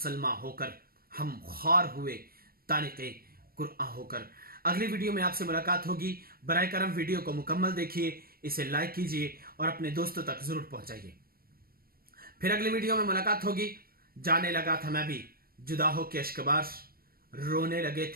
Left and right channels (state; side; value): late; left; 0.43 ms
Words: ہو کر، ہم خوار ہوئے تانق قرآن ہو کر۔ اگلی ویڈیو میں آپ سے ملاقات ہوگی۔ برائے کرم ویڈیو کو مکمل دیکھیے، اسے لائک کیجیے اور اپنے دوستوں تک ضرور پہنچائیے۔ پھر اگلی ویڈیو میں ملاقات ہوگی۔ جانے لگا تھا میں بھی جدا ہو کے اشکبار، رونے لگے